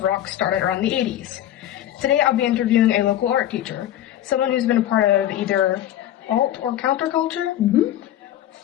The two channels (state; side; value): quieter; right; 12.2 dB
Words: rock started around the 80s. Today, I'll be interviewing a local art teacher, someone who's been a part of either alt or counterculture